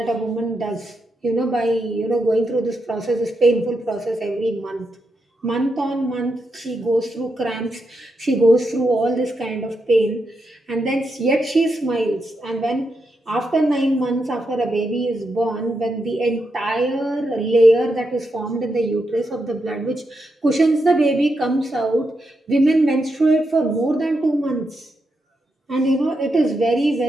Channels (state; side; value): normal; both; correlation 0.84